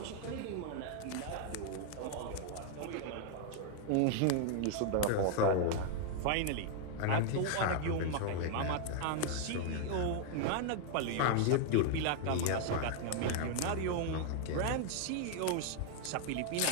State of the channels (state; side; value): different; both; correlation 0.00